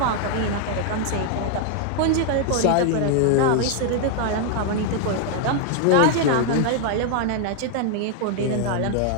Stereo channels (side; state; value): both; different; correlation 0.00